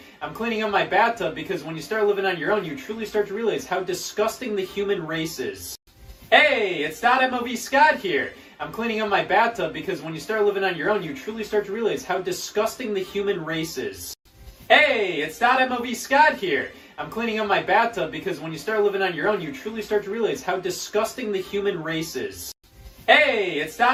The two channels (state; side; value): identical; both; correlation 1.00